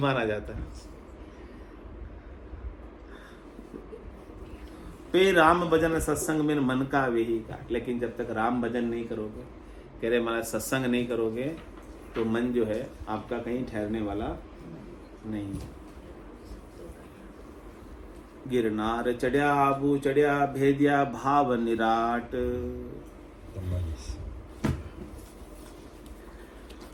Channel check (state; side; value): identical; both; correlation 1.00